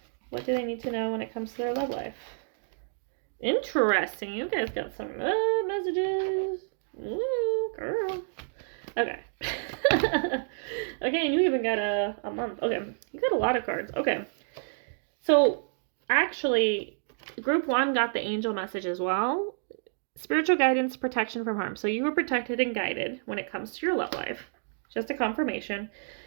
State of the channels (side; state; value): left; silent; digital silence